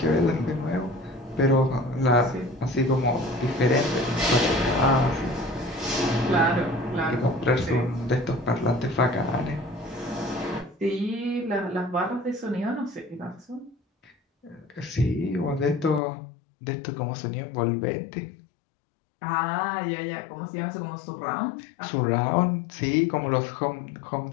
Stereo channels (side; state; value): right; drops out; at 16.0 s